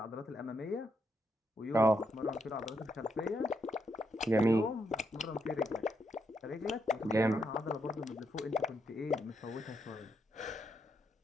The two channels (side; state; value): both; normal; correlation 0.79